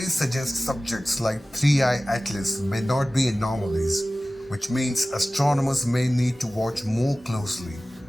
suggest subjects like 3I Atlas may not be anomalies, which means astronomers may need to watch more closely,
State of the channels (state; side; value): normal; both; correlation 0.97